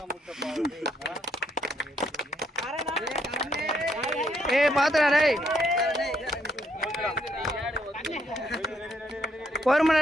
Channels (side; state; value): both; normal; correlation 0.73